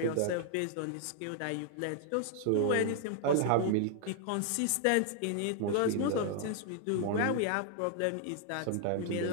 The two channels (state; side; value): different; both; correlation 0.00